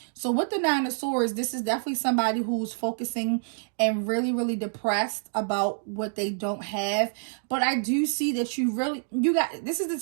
So with the Nine of Swords, this is definitely somebody who's focusing and really, really depressed about what they don't have. But I do see that this is the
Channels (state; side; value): silent; left; digital silence